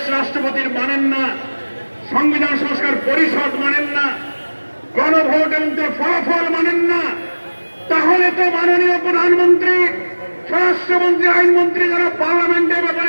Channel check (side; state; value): both; inverted; correlation -1.00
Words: রাষ্ট্রপতির মানেন না, সংবিধান সংস্কার পরিষদ মানেন না, গণভোট এবং তার ফলাফল মানেন না। তাহলে তো মাননীয় প্রধানমন্ত্রী, স্বরাষ্ট্রমন্ত্রী, আইনমন্ত্রী যারা পার্লামেন্টের